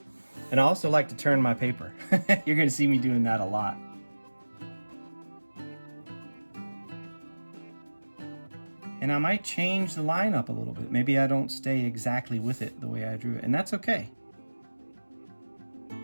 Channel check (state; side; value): inverted; both; correlation -1.00